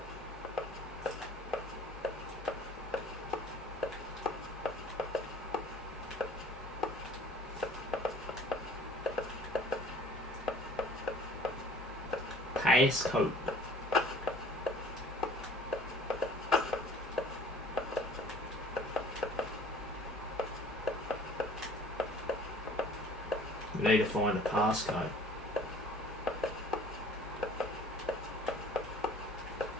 Passcode. We need to find a passcode.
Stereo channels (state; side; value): normal; both; correlation 0.50